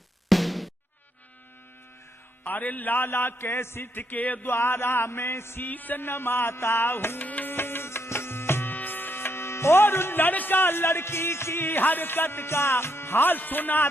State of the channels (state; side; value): normal; both; correlation 0.76